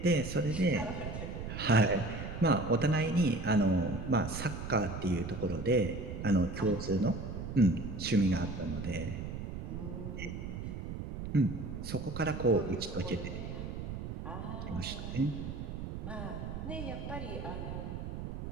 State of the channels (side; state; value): right; noise; rumble, 7 dB below the sound